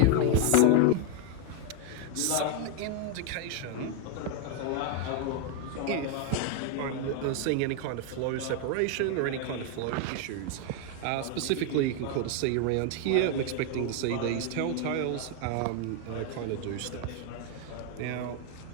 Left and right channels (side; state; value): both; different; correlation 0.01